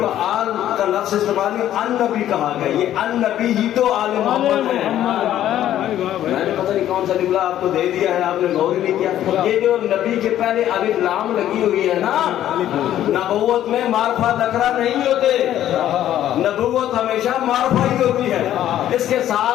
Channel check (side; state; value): right; quieter; 12.0 dB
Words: آل کا لفظ استعمال نہیں، ان نبی کہا گیا. یہ ان نبی ہی تو آل محمد ہے. میں نے پتہ نہیں کون سا جملہ آپ کو دے دیا ہے، آپ نے غور ہی نہیں کیا. یہ جو نبی کے پہلے الف لام لگی ہوئی ہے نا، نبوت میں معرفہ نکرہ نہیں ہوتے، نبوت ہمیشہ معرفہ ہی ہوتی ہے. اس کے